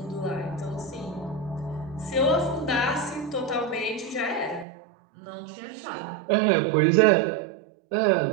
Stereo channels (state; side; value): drops out; left; at 4.7 s